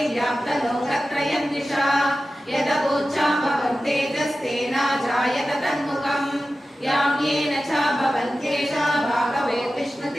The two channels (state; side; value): normal; both; correlation 0.94